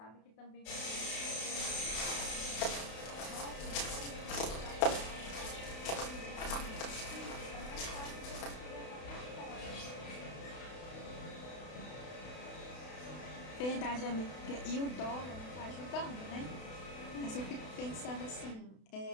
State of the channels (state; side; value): late; right; 32 ms